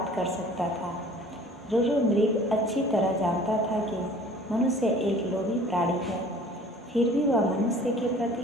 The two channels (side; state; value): both; normal; correlation 0.49